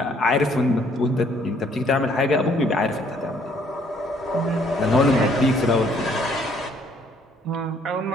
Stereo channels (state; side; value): normal; both; correlation 0.64